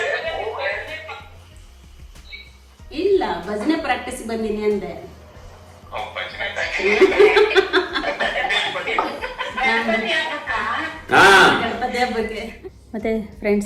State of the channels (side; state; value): both; identical; correlation 1.00